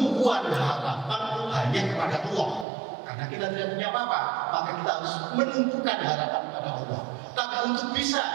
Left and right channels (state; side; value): drops out; left; at 2.7 s